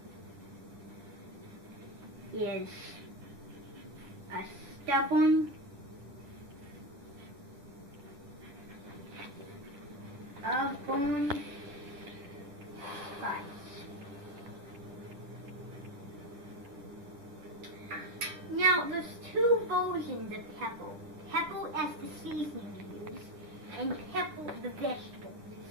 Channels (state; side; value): late; left; 10 ms